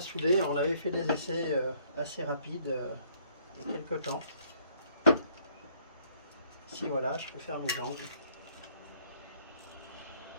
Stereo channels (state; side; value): inverted; both; correlation -0.64